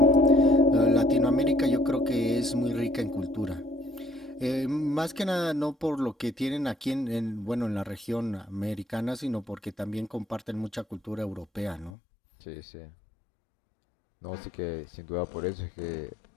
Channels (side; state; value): right; drops out; at 12.0 s